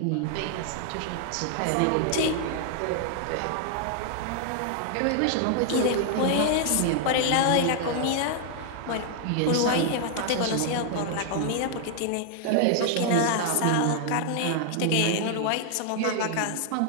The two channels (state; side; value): different; both; correlation 0.00